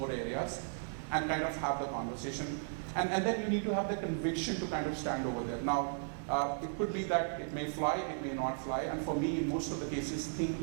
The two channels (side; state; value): left; silent; digital silence